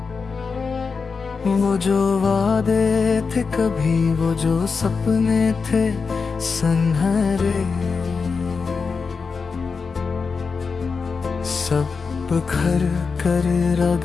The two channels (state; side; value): quieter; right; 5.0 dB